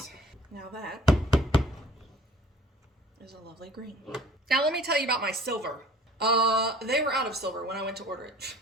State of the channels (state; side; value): normal; both; correlation 0.50